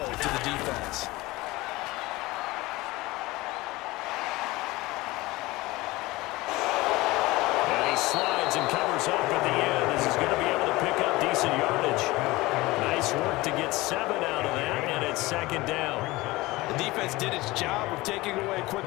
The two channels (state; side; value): quieter; right; 20.4 dB